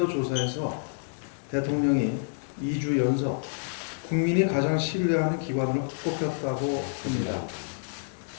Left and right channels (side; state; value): right; silent; 59 dB below the other